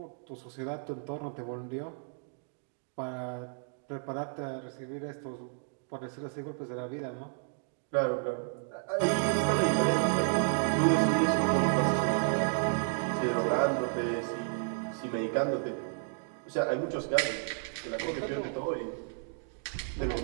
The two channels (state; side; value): silent; left; 56 dB below the other